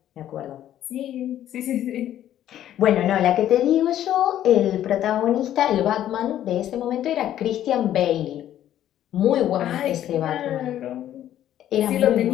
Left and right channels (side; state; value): right; quieter; 11.8 dB